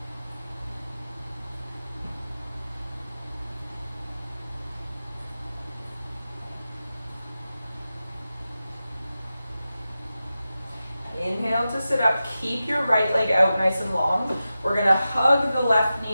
Inhale to sit up, keep your right leg out nice and long. We're gonna hug the left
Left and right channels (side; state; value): both; inverted; correlation -0.93